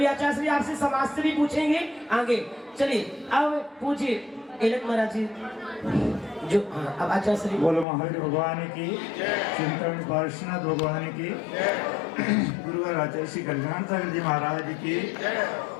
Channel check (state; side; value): drops out; right; at 7.9 s